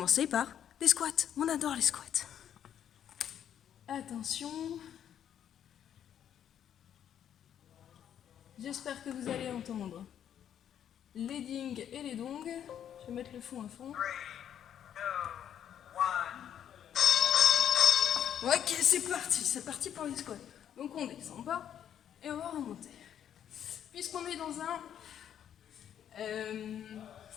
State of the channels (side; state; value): right; quieter; 9.6 dB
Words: par les squats. On adore les squats. Attention. J'espère que vous allez entendre les dings et les dongs. Je vais mettre le fond à fond. Ok, c'est parti pour les squats. Donc on descend bas et on va remonter. Puisqu'on est dans